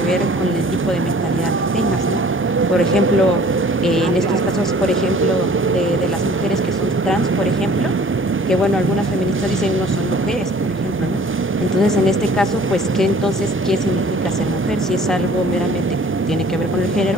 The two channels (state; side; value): normal; both; correlation 0.51